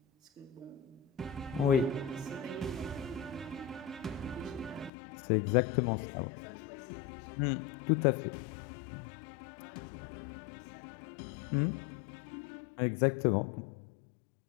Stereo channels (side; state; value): right; drops out; at 4.9 s